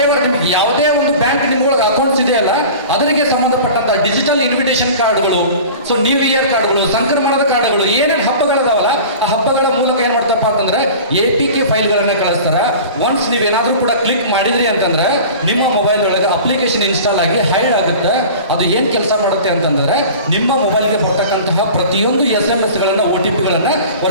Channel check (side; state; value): both; inverted; correlation -0.39